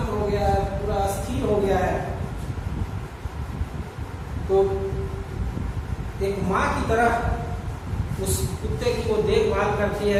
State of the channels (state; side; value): identical; both; correlation 1.00